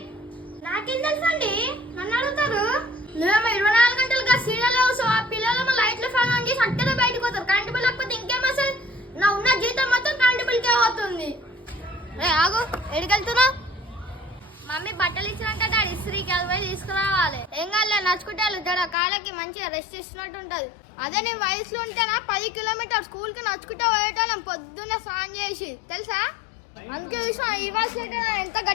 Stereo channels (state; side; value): drops out; right; at 18.9 s